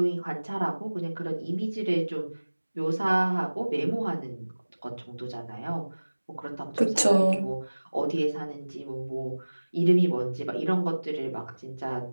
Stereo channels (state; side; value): inverted; both; correlation -1.00